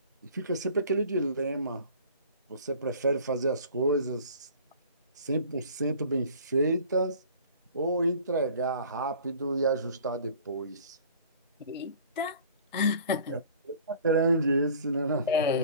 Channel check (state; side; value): inverted; both; correlation -0.47